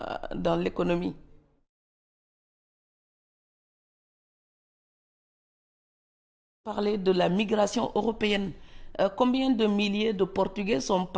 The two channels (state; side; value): identical; both; correlation 1.00